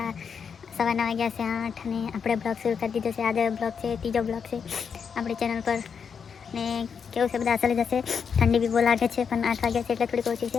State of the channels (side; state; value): right; quieter; 6.6 dB